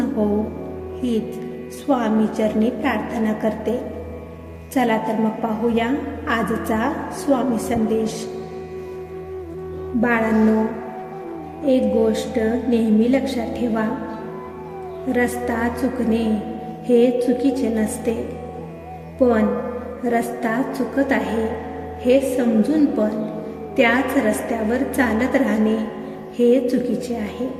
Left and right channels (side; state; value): both; identical; correlation 1.00